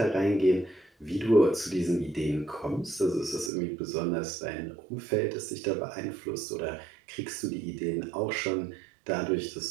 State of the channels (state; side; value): drops out; left; at 3.5 s